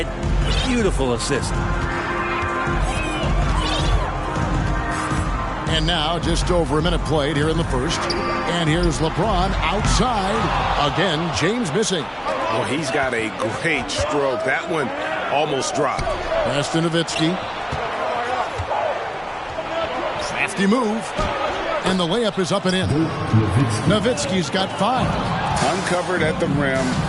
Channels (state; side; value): identical; both; correlation 1.00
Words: Beautiful assist. And now just over a minute played here in the first. And here's LeBron outside. Again, James missing. Well, he's got a great stroke. That one almost dropped. Pass to Nowitzki. Crafty move. And the layup is up and in. Nowitzki's got 5. Uncovered at the rim,